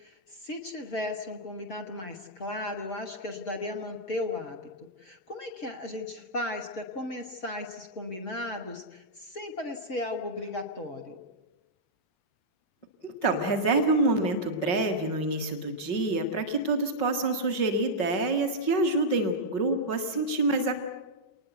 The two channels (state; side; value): late; right; 5.4 ms